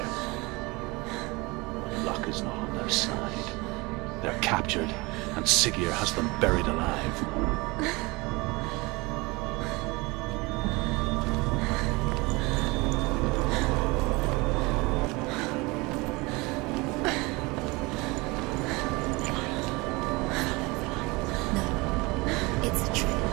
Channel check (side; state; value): left; quieter; 24.7 dB